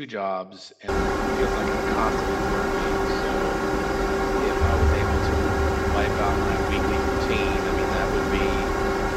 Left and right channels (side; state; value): both; identical; correlation 1.00